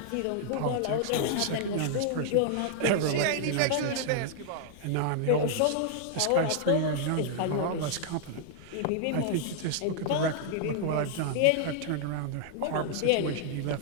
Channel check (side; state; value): both; different; correlation -0.01